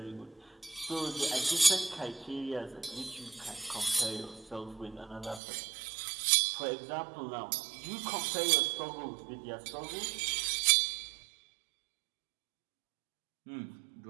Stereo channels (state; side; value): drops out; left; at 5.4 s